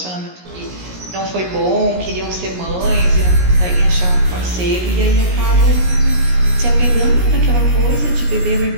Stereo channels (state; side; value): late; left; 17 ms